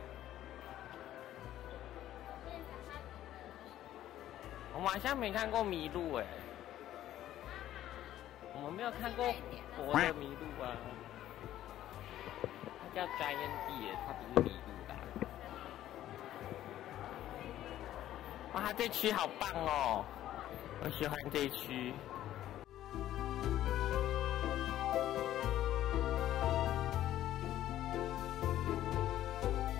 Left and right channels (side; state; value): right; quieter; 12.8 dB